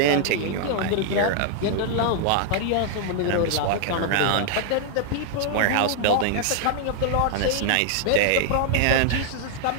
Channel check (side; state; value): both; different; correlation 0.00